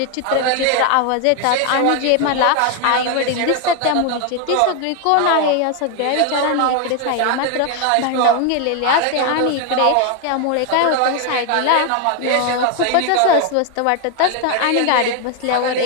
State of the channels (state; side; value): different; both; correlation 0.01